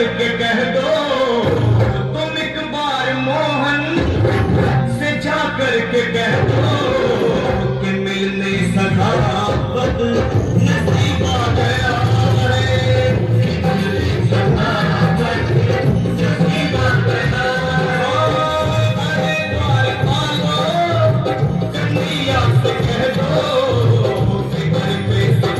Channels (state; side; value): identical; both; correlation 1.00